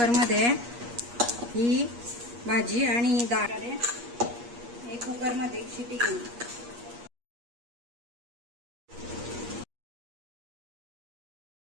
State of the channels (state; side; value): late; left; 8.4 ms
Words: ही भाजी आणि डाळ हे कुकरमध्ये एक शिटी घेईन.